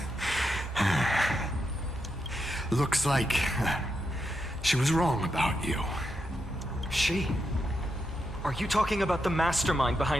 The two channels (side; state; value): both; normal; correlation 0.84